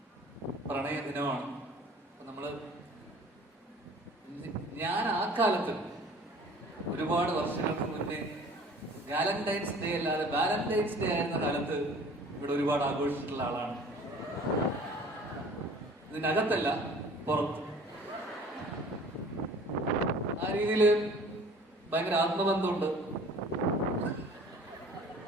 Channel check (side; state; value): both; normal; correlation 0.49